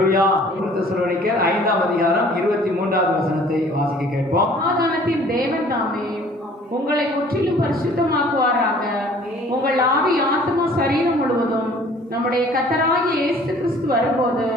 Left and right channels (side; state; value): both; normal; correlation 0.53